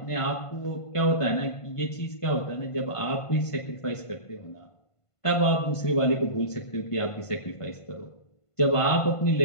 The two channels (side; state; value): right; late; 1.5 ms